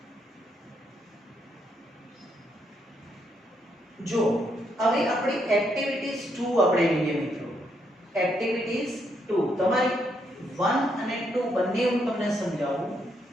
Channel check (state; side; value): normal; both; correlation 0.76